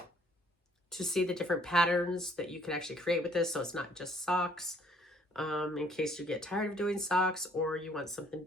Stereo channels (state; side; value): normal; both; correlation 0.62